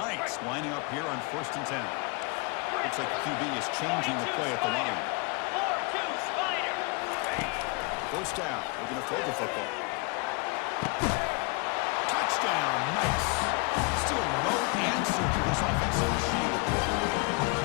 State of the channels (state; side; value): quieter; right; 30.1 dB